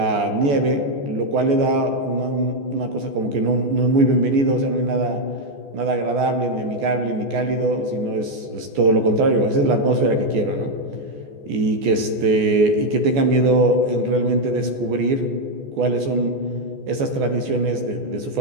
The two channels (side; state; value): left; late; 14 ms